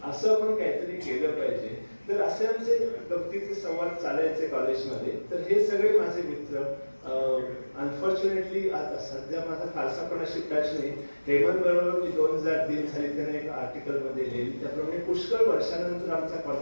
असं आपण काहीतरी केलं पाहिजे. तर असे आमचे गमतीचे संवाद चालायचे कॉलेजमध्ये. तर हे सगळे माझे मित्र अनफॉर्च्युनेटली आता सध्या माझा फारसा पण अशी टच नाही. हेमंत बरोबर मी 2003 साली त्याने एक आर्टिकलमध्ये लिहिली, त्याप्रमाणे पुष्कळ वर्षानंतर आमचा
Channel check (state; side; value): inverted; both; correlation -1.00